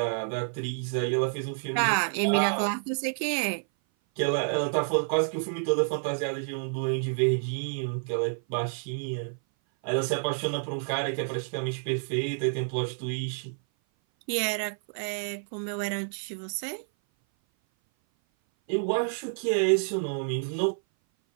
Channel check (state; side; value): silent; left; 56 dB below the other